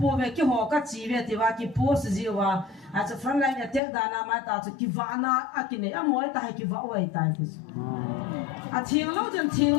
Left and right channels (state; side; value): drops out; right; at 3.8 s